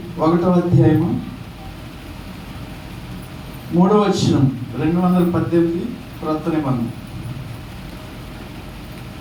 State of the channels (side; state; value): both; identical; correlation 1.00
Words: 1వ అధ్యాయము 3వ వచనం, 218 క్రొత్త నిబంధన.